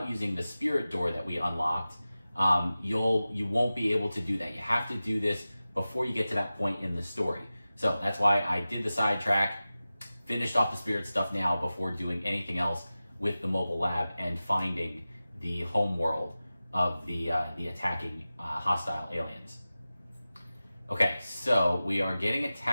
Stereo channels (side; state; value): both; inverted; correlation -0.96